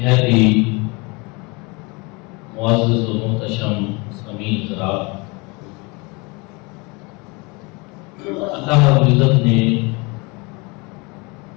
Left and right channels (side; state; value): right; quieter; 27.8 dB